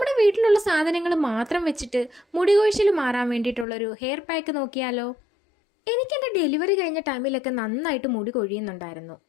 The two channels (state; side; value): drops out; right; at 3.7 s